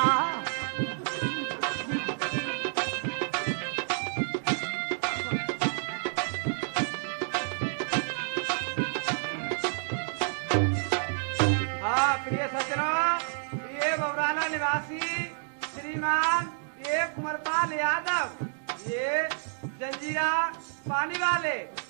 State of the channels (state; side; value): silent; left; digital silence